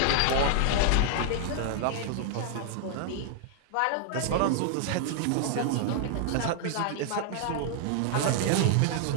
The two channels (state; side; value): different; both; correlation -0.01